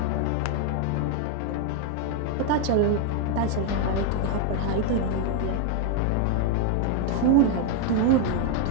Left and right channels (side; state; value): both; different; correlation 0.01